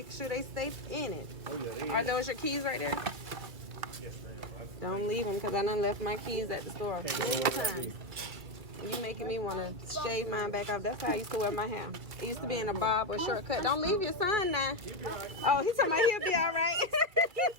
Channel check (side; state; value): left; late; 2.3 ms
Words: sure they stay in it. Oh, yeah. Are those your keys right there? Yes, ma'am. Don't leave them, because I done left my keys at the store many times. You making me want to shave mine back off. That's how I used to wear my hair. It used to be in a bob or shortcut. Don't leave your son now. Oh, he's talking about he'll be all right.